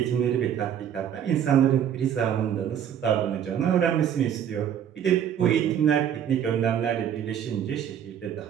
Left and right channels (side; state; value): left; quieter; 9.3 dB